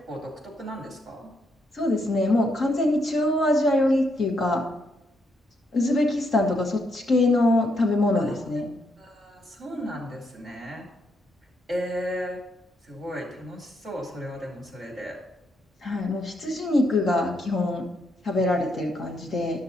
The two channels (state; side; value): normal; both; correlation 0.77